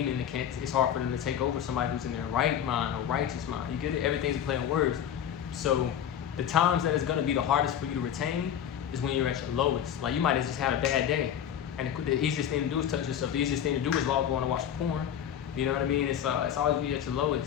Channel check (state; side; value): quieter; right; 9.5 dB